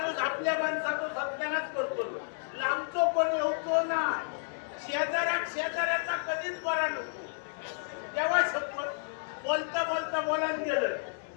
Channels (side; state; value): right; silent; digital silence